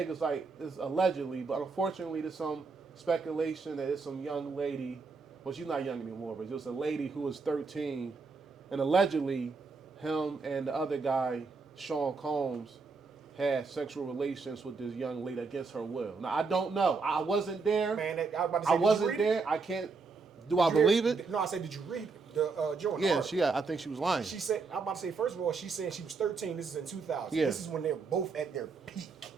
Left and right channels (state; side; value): quieter; left; 4.5 dB